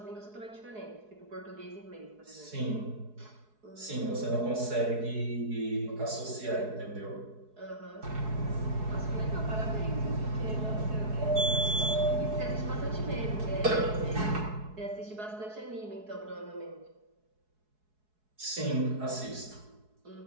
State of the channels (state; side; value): late; left; 4.7 ms